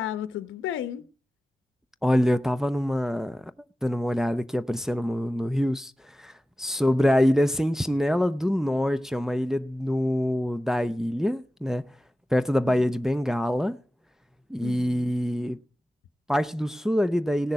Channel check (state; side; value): normal; both; correlation 0.95